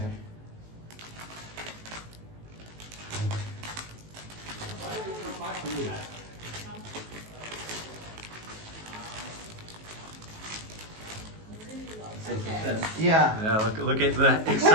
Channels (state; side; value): late; left; 19 ms